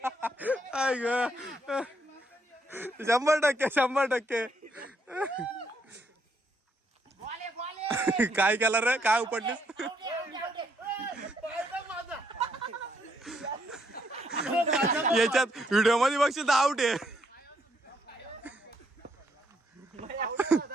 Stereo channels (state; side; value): normal; both; correlation 0.73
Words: आय ग 100%. काय केलं रे? काय उपडलीस? याच्यात व्हिडिओ मध्ये बघशील तर आउट आहे.